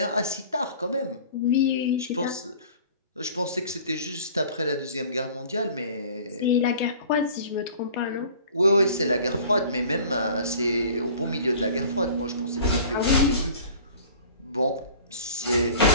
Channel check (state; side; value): inverted; both; correlation -0.46